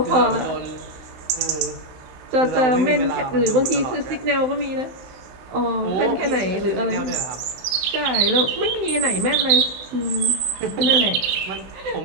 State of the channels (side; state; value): left; late; 16 ms